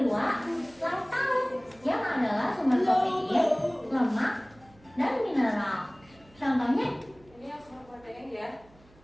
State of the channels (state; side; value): noise; right; hum, 27 dB below the sound